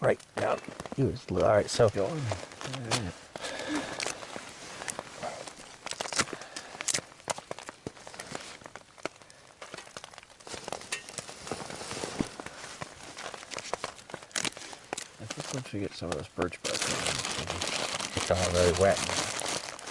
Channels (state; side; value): identical; both; correlation 1.00